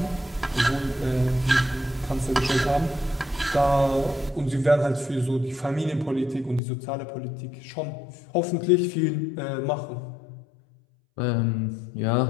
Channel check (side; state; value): right; drops out; at 6.6 s